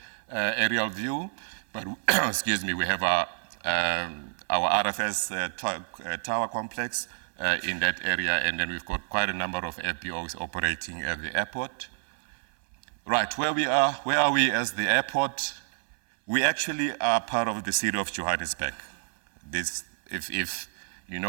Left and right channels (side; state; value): left; silent; 59 dB below the other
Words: aerial view, but excuse me, we have our RFS tower complex in that area, and then we've got quite a number of FBOs operating at the airport. Right, where are we as the airport? We actually are part of the city of Johannesburg. If you